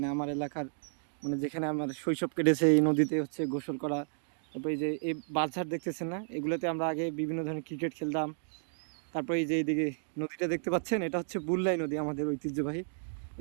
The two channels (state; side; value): silent; left; digital silence